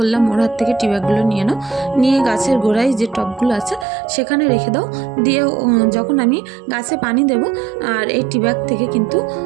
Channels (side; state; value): left; drops out; at 3.9 s